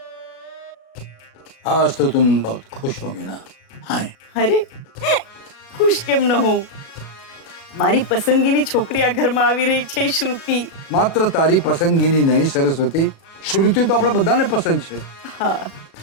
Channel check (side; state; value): right; late; 37 ms